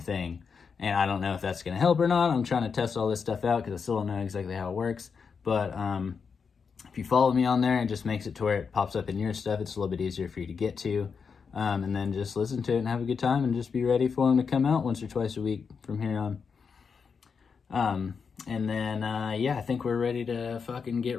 And I don't know if that's going to help or not. I'm trying to test all this stuff out because I still don't know exactly how it works. But if you follow me on there, it just makes it to where it pops up in your stuff. It's a little bit easier for you to get to. And then just listen to it and have a good time and just be ready for them to come out once or twice a week from here on. And then, I think we're ready to fucking get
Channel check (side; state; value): right; quieter; 5.8 dB